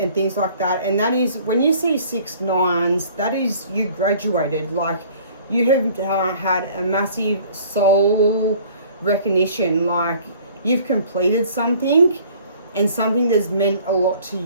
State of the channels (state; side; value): inverted; both; correlation -0.53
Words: things like that. And that is, when you see 6 9s, that is, you graduated. Like, you have had a massive soul recognition. Like, you've completed something, and something that's meant a lot to